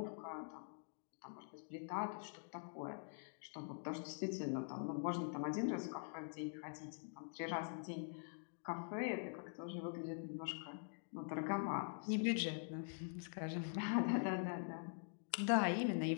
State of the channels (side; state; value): right; silent; digital silence